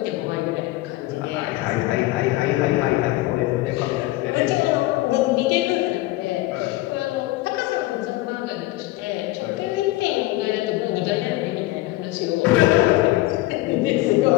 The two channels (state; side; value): quieter; right; 18.1 dB